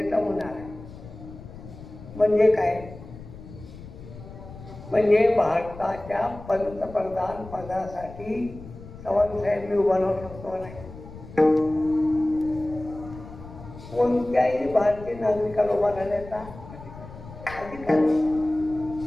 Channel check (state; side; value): noise; left; rumble, 15 dB below the sound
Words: होणार आहे. म्हणजे काय, म्हणजे भारताच्या पंतप्रधान पदासाठी चव्हाणसाहेब मी उभा राहू शकतो नाही. कोणत्याही भारतीय नागरिकाला उभा राहण्याचा अधिकार